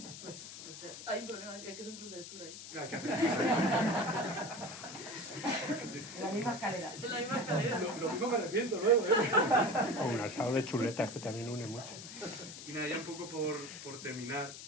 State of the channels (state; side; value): noise; left; hiss, 12 dB below the sound